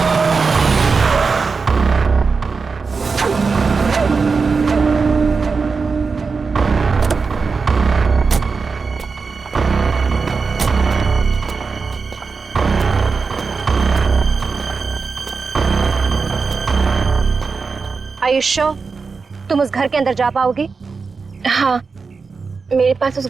आयुष्यो, तुम उस घर के अंदर जा पाओगे? हाँ, मेरे पास उस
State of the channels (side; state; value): left; quieter; 4.8 dB